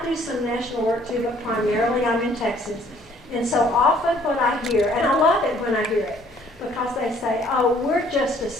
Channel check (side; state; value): both; normal; correlation 0.60